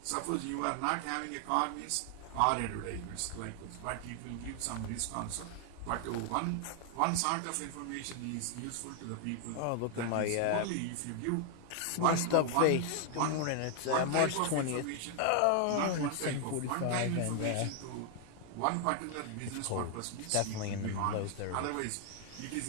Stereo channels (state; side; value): different; both; correlation 0.00